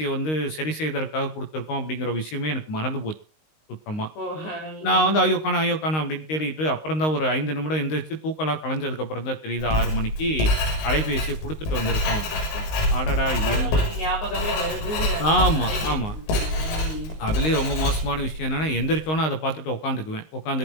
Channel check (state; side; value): late; right; 19 ms